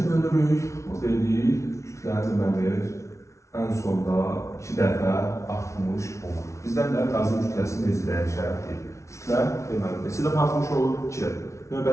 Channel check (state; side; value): late; right; 0.14 ms